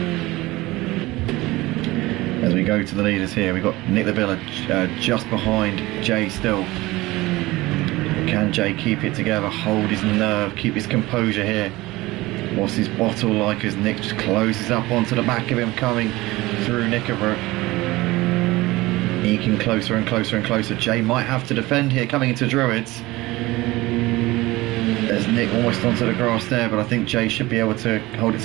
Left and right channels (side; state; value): left; quieter; 19.7 dB